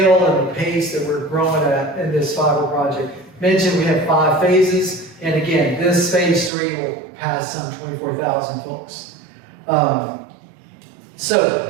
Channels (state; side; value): drops out; left; at 6.5 s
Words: and the pace that we're growing at in this fiber project. Mentioned we have 5 phases, and again, this phase 3 will pass some 24,000 folks.